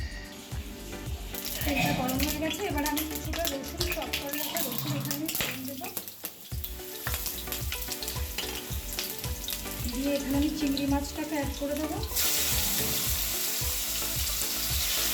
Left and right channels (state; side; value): identical; both; correlation 1.00